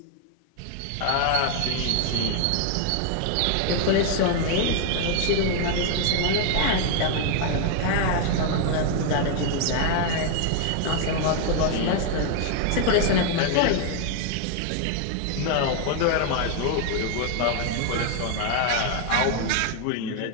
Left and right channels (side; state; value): both; different; correlation 0.00